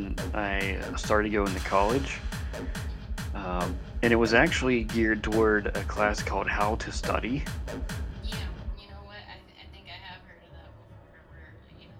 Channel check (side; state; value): both; identical; correlation 1.00